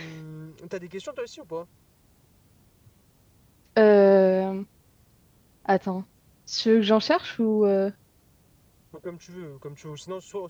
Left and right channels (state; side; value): identical; both; correlation 1.00